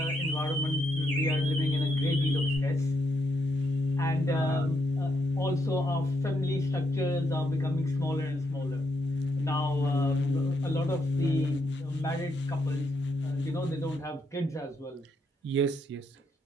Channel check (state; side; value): normal; both; correlation 0.78